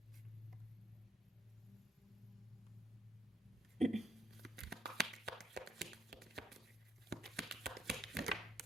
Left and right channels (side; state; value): both; normal; correlation 0.72